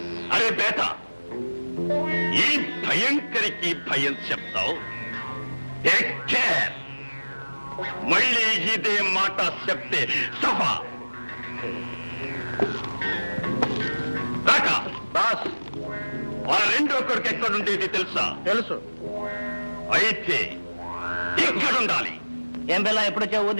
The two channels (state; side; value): inverted; both; correlation -1.00